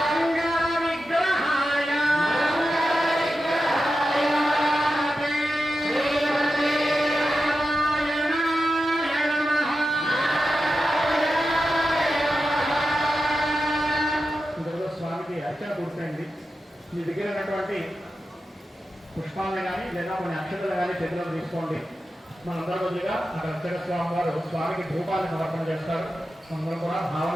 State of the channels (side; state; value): both; normal; correlation 0.91